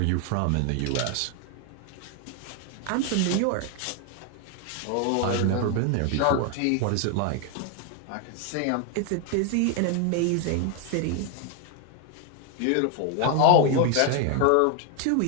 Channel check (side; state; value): both; different; correlation 0.00